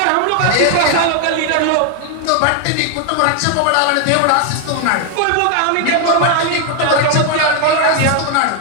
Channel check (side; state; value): both; different; correlation 0.00